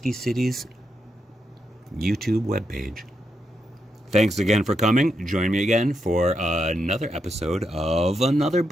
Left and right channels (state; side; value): normal; both; correlation 0.82